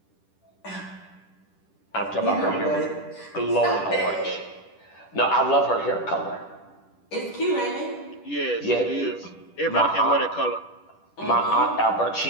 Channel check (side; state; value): right; late; 10 ms